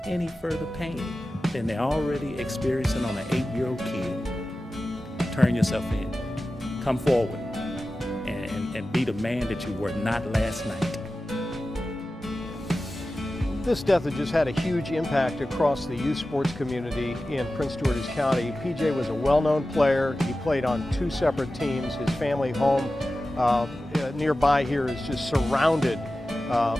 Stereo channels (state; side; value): normal; both; correlation 0.94